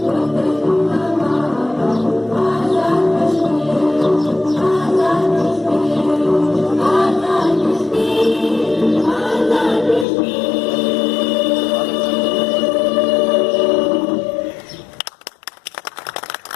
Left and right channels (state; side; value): drops out; right; at 10.1 s